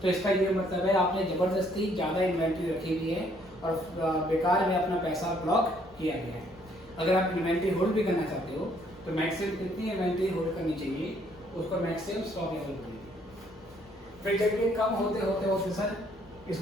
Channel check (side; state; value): both; normal; correlation 0.66